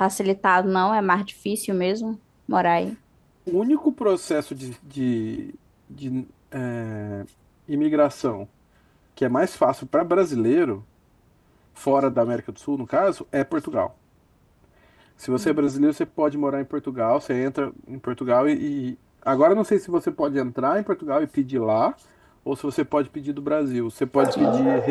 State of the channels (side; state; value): both; identical; correlation 1.00